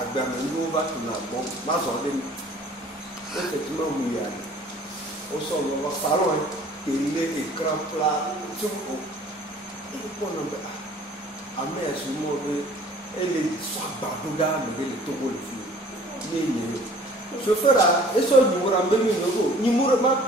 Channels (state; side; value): normal; both; correlation 0.51